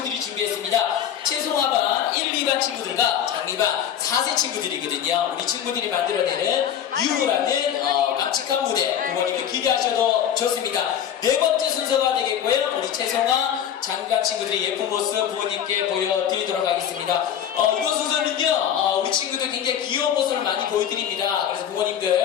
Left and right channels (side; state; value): right; quieter; 9.5 dB